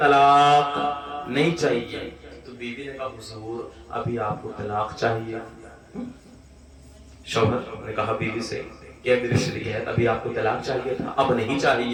नहीं चाहिए। तो बीवी ने कहा हुजूर अभी आपको तलाक चाहिए? शौहर ने कहा बीवी से क्या मेरी शरीयत अभी आपको तलाक चाहिए था, अब नहीं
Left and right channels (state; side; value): identical; both; correlation 1.00